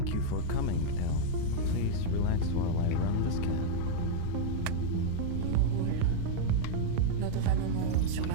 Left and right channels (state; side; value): different; both; correlation -0.01